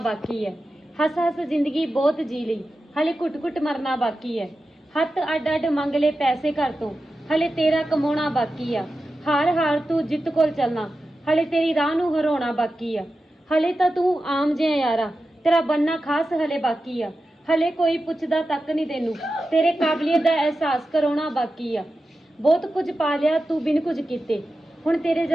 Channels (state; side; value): normal; both; correlation 0.92